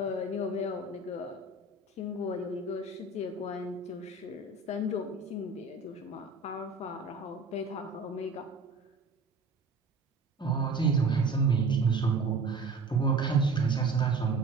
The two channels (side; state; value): left; quieter; 3.6 dB